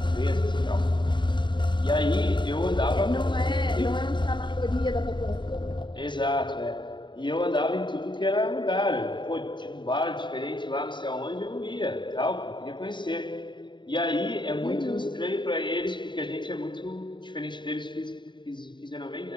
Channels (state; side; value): late; right; 0.23 ms